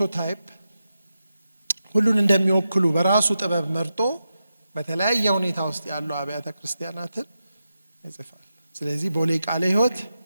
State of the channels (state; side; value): inverted; both; correlation -0.89